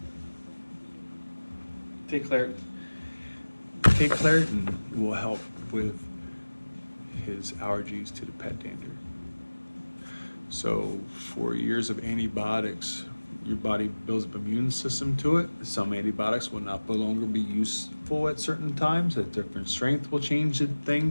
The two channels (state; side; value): inverted; both; correlation -1.00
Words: Take Claritin. Take Claritin will help with his allergies to the pet dander. So 4 years of antibiotics, your body builds up an immune system to it. Some antibiotics will no longer be useful at certain times. At different strength will change